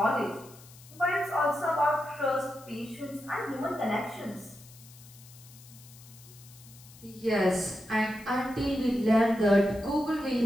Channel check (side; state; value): left; noise; hiss, 21 dB below the sound